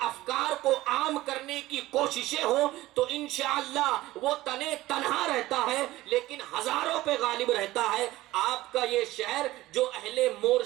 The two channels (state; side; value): quieter; left; 17.1 dB